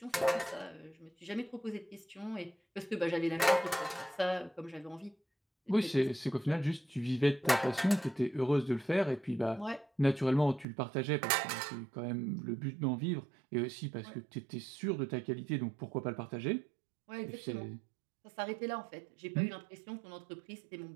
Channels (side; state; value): left; drops out; at 10.7 s